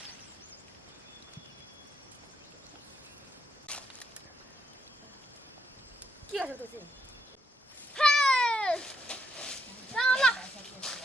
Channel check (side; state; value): both; normal; correlation 0.77